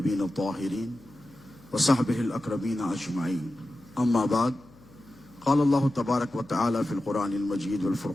الطاہرین وصحبہ الاکرمین اجمعین، اما بعد، قال اللہ تبارک وتعالی فی القرآن المجید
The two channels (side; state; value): left; noise; hum, 25 dB below the sound